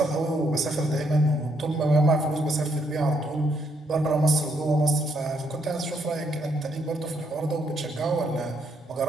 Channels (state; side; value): normal; both; correlation 0.74